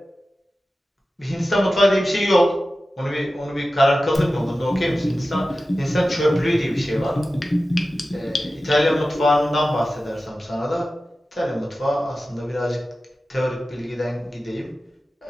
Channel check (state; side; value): normal; both; correlation 0.94